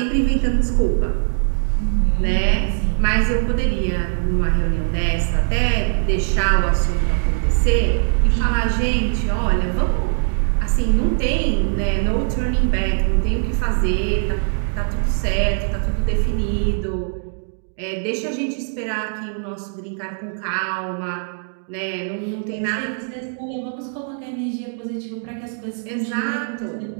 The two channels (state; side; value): silent; left; digital silence